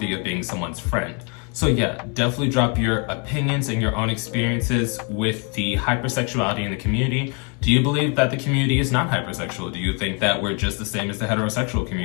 of being someone's friend. So yeah, definitely drop your opinions and your own experiences with the hypersexuality in the community. Do you believe that the community is not hypersexual? Do you think that we're just the same as the heterosexual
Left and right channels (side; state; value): right; quieter; 35.4 dB